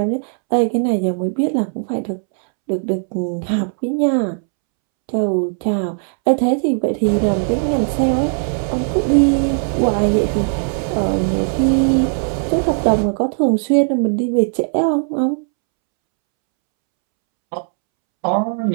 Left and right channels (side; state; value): left; silent; 67 dB below the other